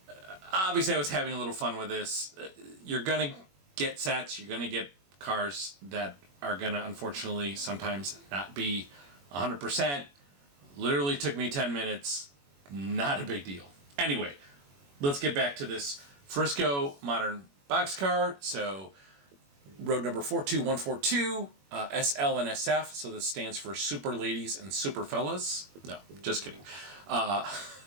obviously I was having a little fun with this. You're going to get sets, you're going to get cars that are going to unfortunately sometimes not be 100%. Literally took me 10 minutes. Not a big deal. Anyway, let's get back to this Frisco modern boxcar. So, road number 42142. SL and SF, so this stands for Super Ladies and Super Fellas. No, just kidding.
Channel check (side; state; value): left; late; 21 ms